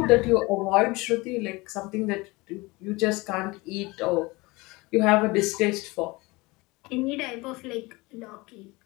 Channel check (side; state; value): right; quieter; 23.3 dB